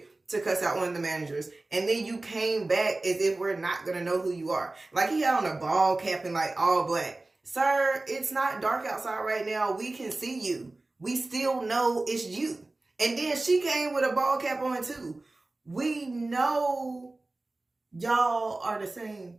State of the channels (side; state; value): left; quieter; 3.0 dB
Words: to cuss out one of the managers, and then you came back as if we're not going to know who you are. Like, he had on a ball cap and like all black. Sir, it's not dark outside right now. We can see you. We still know it's you. And then she came with a ball cap on too. We know y'all are the same